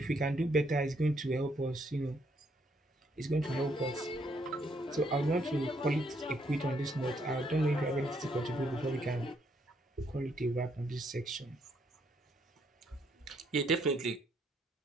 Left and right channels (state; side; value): normal; both; correlation 0.72